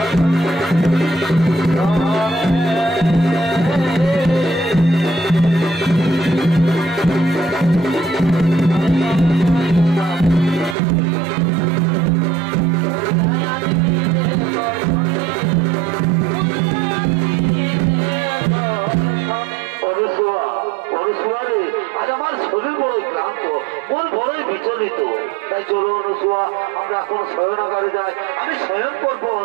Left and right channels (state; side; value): drops out; left; at 10.8 s